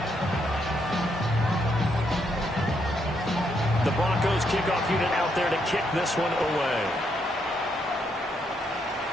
The Broncos kickoff unit out there to kick this one away.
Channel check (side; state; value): both; normal; correlation 0.76